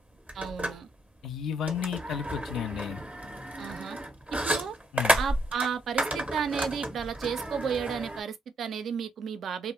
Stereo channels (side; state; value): both; normal; correlation 0.74